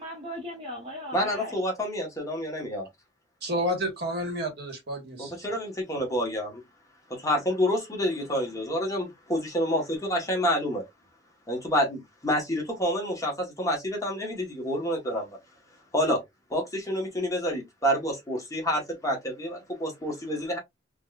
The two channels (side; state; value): both; normal; correlation 0.32